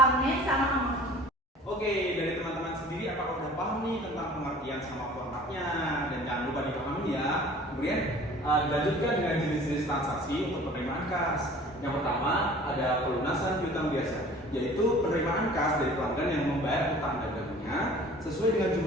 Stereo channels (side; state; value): both; normal; correlation 0.47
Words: name, sama amount. Oke, dari teman-teman sendiri apakah udah paham nih tentang pengertian sama formatnya? Dan jangan lupa dipahami ya. Kemudian dilanjutkan dengan jenis-jenis transaksi untuk penerimaan kas. Yang pertama ada pelunasan piutang biasa, yaitu penerimaan kas dari pelanggan yang membayar utang dagangnya sesuai dengan